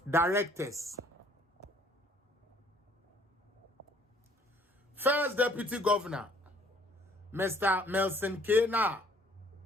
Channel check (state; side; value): normal; both; correlation 0.59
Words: Directors. First Deputy Governor, Mr. Melson Kena,